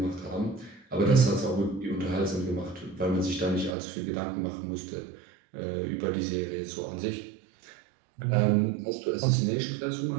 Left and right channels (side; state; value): left; drops out; at 3.8 s